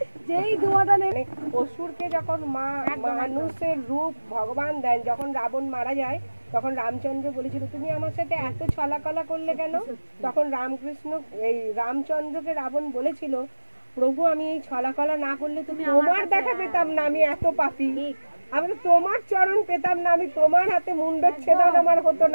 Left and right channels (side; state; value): both; inverted; correlation -1.00